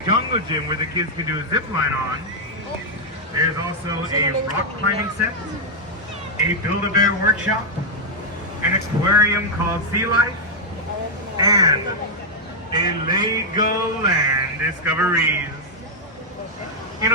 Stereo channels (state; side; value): normal; both; correlation -0.02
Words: jungle gym where the kids can do a zip line on, there's also a rock climbing set, a Build-A-Bear workshop, an aquarium called Sea Life, and a Legoland Discoveries. You